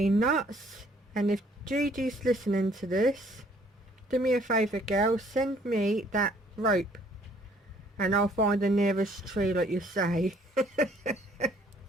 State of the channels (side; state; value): both; normal; correlation 0.61